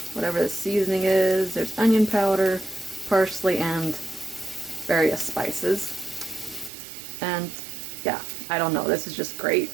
whatever the seasoning is. There's onion powder, parsley, and various spices. And yeah, I don't know, this is just great.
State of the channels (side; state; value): left; drops out; at 6.7 s